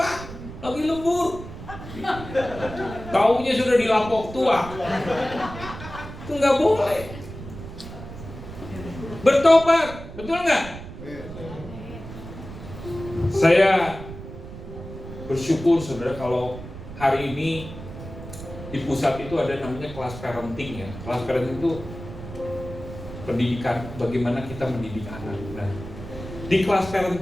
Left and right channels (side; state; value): right; noise; rumble, 12 dB below the sound